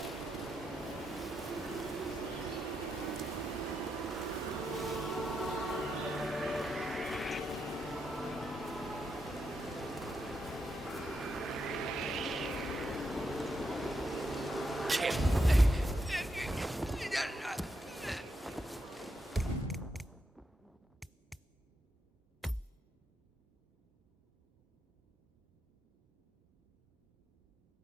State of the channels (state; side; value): normal; both; correlation 0.82